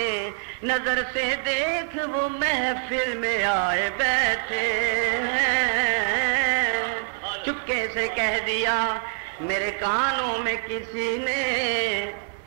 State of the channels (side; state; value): left; silent; 62 dB below the other